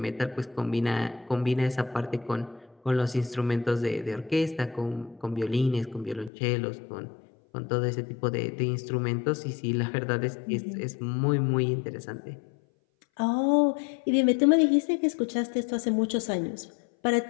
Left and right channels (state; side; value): drops out; right; at 6.3 s